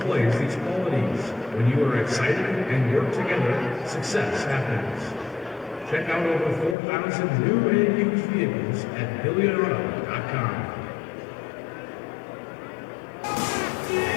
these qualities. When you are excited and work together, success happens. Check out over 4,000 new and used vehicles at GilliganAuto.com.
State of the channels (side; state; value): right; drops out; at 6.8 s